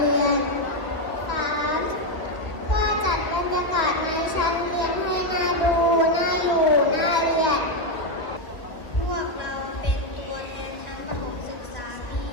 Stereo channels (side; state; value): right; late; 1.8 ms